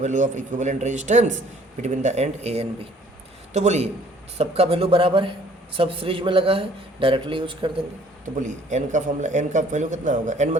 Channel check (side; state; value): both; normal; correlation 0.57